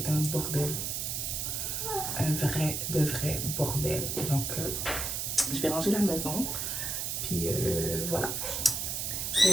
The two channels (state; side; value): noise; right; hiss, 2 dB below the sound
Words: un bordel. Un vrai bordel. Donc, je vais ranger la maison. Puis voilà.